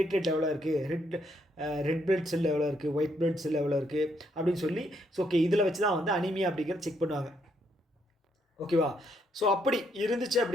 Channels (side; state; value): both; normal; correlation 0.74